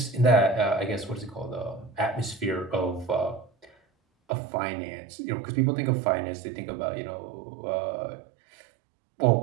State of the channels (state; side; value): drops out; left; at 4.3 s